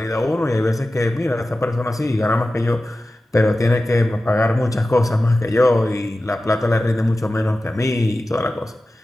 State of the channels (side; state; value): both; normal; correlation 0.95